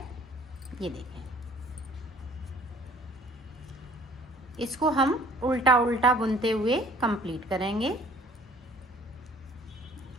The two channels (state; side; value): normal; both; correlation 0.54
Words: ये देखें, इसको हम उल्टा उल्टा बुनते हुए कंप्लीट करेंगे।